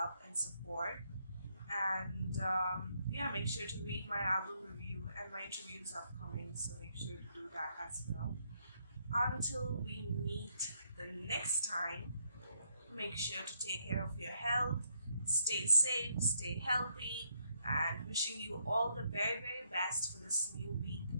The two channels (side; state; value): both; inverted; correlation -0.74